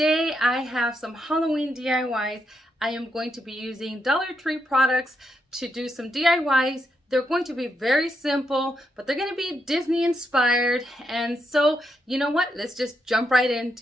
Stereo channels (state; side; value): normal; both; correlation 0.81